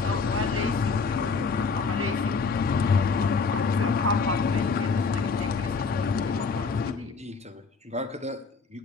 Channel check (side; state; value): right; quieter; 4.8 dB